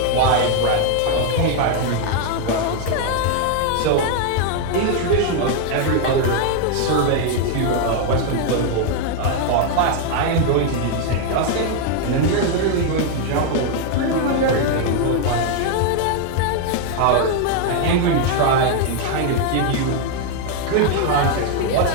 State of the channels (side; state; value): both; different; correlation 0.00